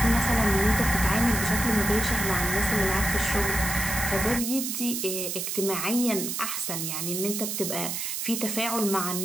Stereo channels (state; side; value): noise; right; hiss, 3 dB below the sound